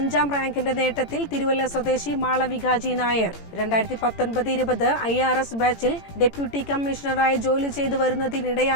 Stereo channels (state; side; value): late; right; 18 ms